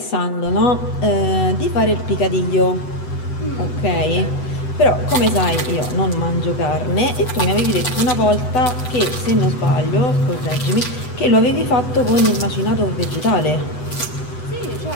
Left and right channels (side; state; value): right; late; 8.0 ms